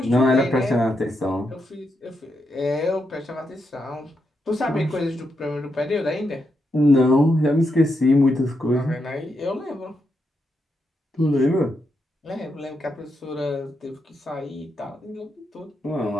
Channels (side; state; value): both; normal; correlation 0.83